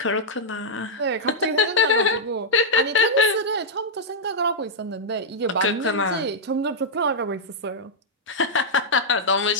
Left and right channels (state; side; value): normal; both; correlation -0.07